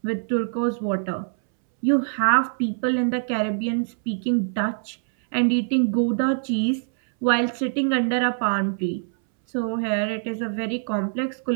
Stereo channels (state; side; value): silent; left; 63 dB below the other